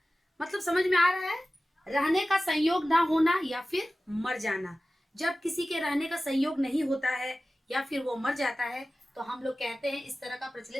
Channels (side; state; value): both; normal; correlation 0.96